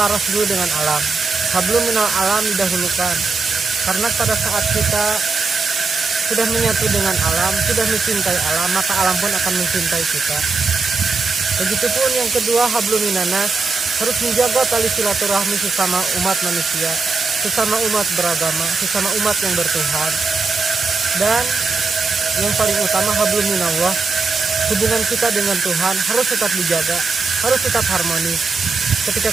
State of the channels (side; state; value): left; quieter; 4.2 dB